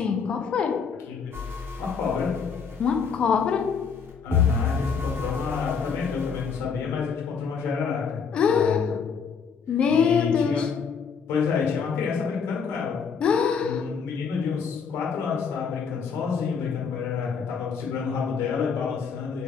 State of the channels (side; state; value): right; quieter; 6.0 dB